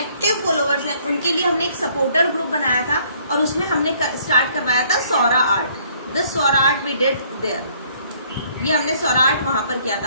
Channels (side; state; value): both; inverted; correlation -0.62